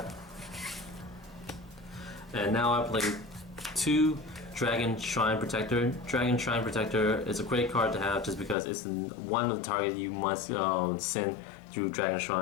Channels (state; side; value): drops out; right; at 8.6 s